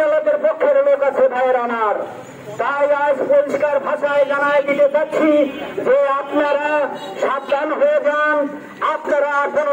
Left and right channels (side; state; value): both; identical; correlation 1.00